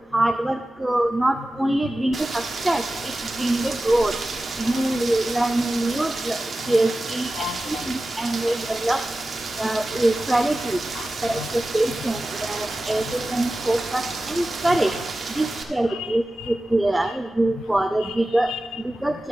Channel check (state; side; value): normal; both; correlation 0.94